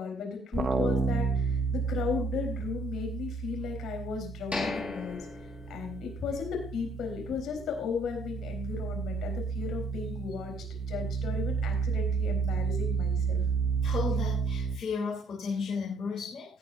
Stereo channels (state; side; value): normal; both; correlation 0.64